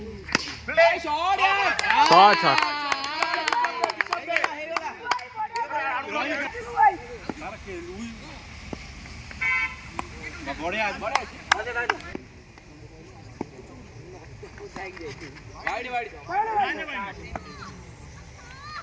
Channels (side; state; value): both; identical; correlation 1.00